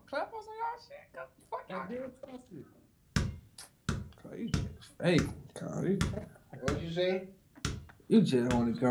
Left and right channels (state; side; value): identical; both; correlation 1.00